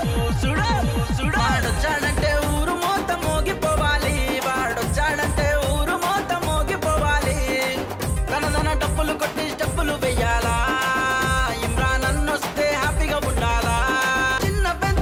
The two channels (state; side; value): identical; both; correlation 1.00